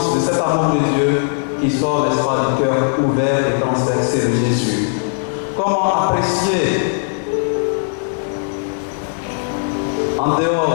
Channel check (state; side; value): silent; right; digital silence